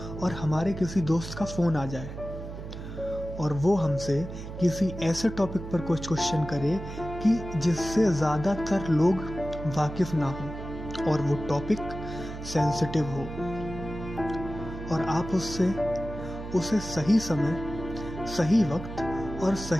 और हमारे किसी दोस्त का फोन आ जाए और वो हमसे किसी ऐसे टॉपिक पर कुछ क्वेश्चन करे कि जिससे ज़्यादातर लोग वाकिफ ना हो और वो टॉपिक सेंसिटिव हो, और आप उसे सही समय, सही वक्त और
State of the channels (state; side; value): noise; right; hum, 9 dB below the sound